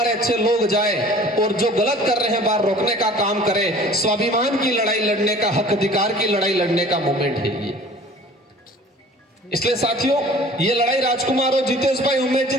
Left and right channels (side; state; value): both; normal; correlation 0.47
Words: अच्छे लोग जाए और जो गलत कर रहे हैं बाहर रोकने का काम करें। स्वाभिमान की लड़ाई लड़ने का, हक अधिकार की लड़ाई लड़ने का मूवमेंट है ये। इसलिए साथियों, ये लड़ाई राजकुमार और जितेश भाई, उमेश जी,